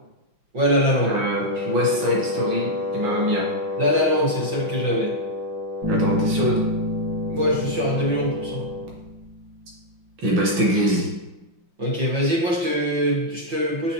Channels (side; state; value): left; late; 5.8 ms